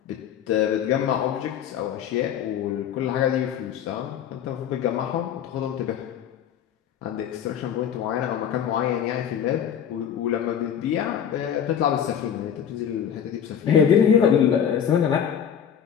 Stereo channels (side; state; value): right; quieter; 8.7 dB